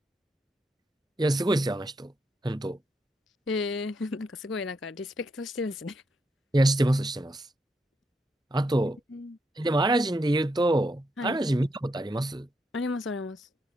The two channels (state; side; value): normal; both; correlation 0.80